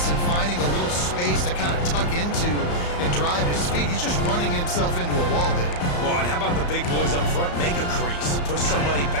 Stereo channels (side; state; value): right; late; 34 ms